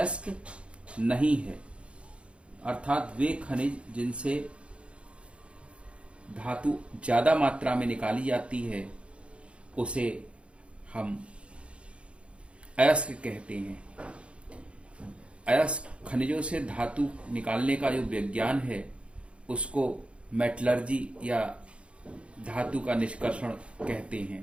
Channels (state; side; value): late; left; 0.059 ms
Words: नहीं है। अर्थात वे खनिज जिनसे धातु ज्यादा मात्रा में निकाली जाती है उसे हम अयस्क कहते हैं। अयस्क खनिजों से धातु निकालने का जो विज्ञान है उसको मेटलर्जी या धातु का निष्कर्षण कहते